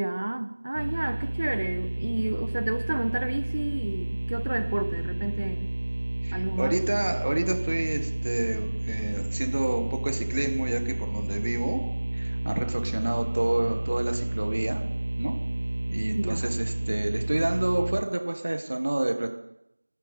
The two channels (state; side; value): inverted; both; correlation -1.00